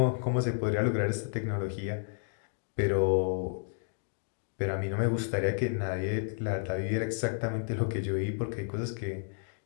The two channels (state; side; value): silent; right; digital silence